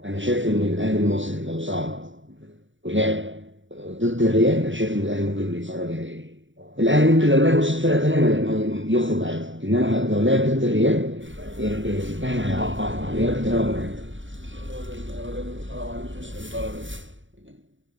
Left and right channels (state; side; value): late; left; 0.56 ms